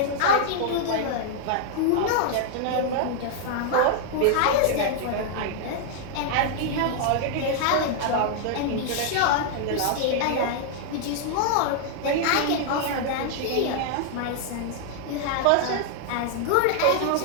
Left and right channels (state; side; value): different; both; correlation -0.01